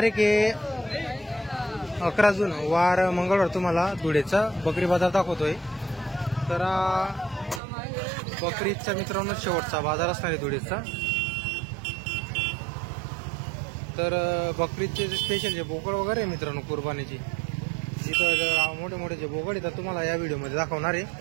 आहे 11 जून, वार मंगळवार। तुम्हाला धुळेचा बकरी बाजार दाखवतोय। तर बकरीचा मित्रांनो शेवटचा बाजार असणार आहे धुळेचा। तर बकरीचे स्पेशल जे बोकड वगैरे मित्रांनो कुर्बानीची, इथं मोठे मोठे जे बोकड आहेत तुम्हाला या व्हिडिओमध्ये दाखवणार आहे।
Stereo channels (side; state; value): left; drops out; at 7.6 s